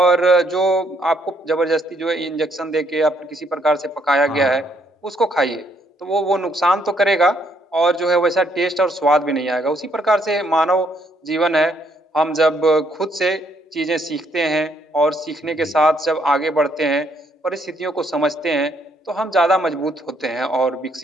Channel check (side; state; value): both; normal; correlation 0.70